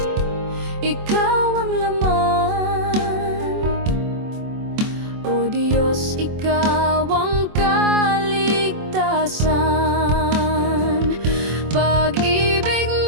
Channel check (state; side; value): late; left; 24 ms